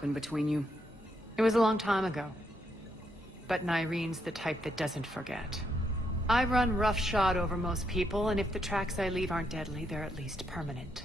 between you? It was a long time ago. But Nyreen's the type that doesn't forget. I run roughshod over most people, and if the tracks I leave aren't deadly, they're at least permanent.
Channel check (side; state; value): both; normal; correlation 0.78